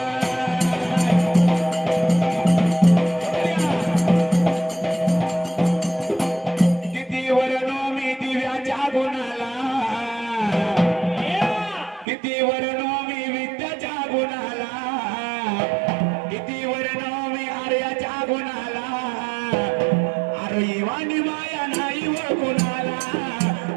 किती वरण मी दिव्याच्या गुणाला किती वरण मी विद्याच्या गुणाला किती वरण मी आर्याच्या गुणाला अरे वाणी माया नाही व गुणाला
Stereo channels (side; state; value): left; drops out; at 12.1 s